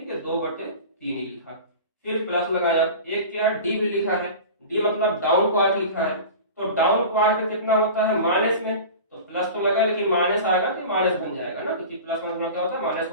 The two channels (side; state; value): both; inverted; correlation -0.35